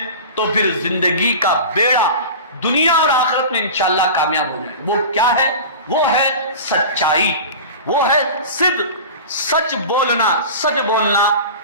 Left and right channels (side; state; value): both; inverted; correlation -0.33